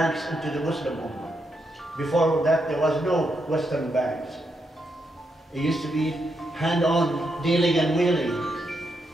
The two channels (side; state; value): both; normal; correlation 0.81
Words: into the Muslim Ummah. Before that, there was no Western banks. It used to be hand-on dealing and wheeling.